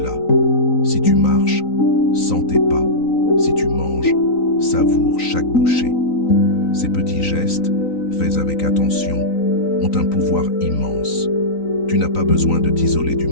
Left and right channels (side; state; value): right; late; 3.9 ms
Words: Si tu marches, sens tes pas. Si tu manges, savoure chaque bouchée. Ces petits gestes, faits avec attention, ont un pouvoir immense. Tu n'as pas besoin de t'isoler du